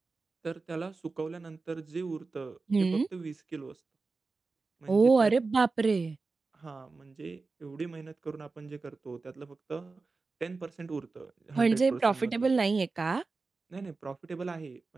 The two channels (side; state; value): left; quieter; 4.0 dB